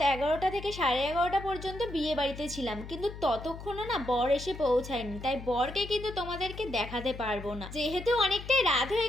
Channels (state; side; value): noise; left; hum, 12 dB below the sound